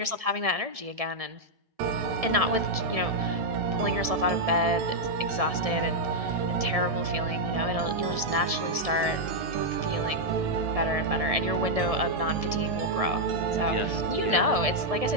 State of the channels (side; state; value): left; late; 1.7 ms